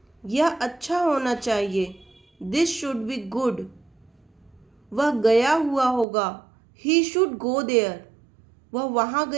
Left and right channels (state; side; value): drops out; left; at 6.1 s